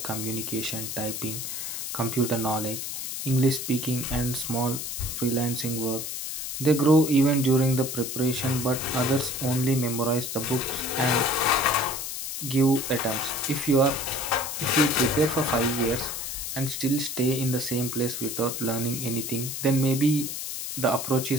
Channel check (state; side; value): noise; left; hiss, 5 dB below the sound